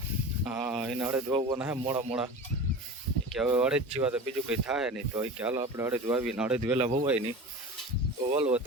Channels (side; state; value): both; normal; correlation 0.33